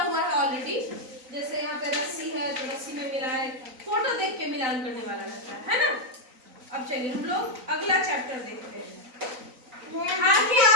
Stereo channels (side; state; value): left; late; 3.9 ms